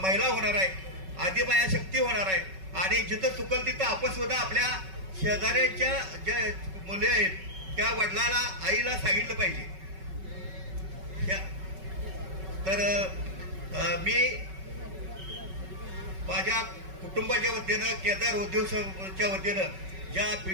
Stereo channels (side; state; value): left; late; 5.3 ms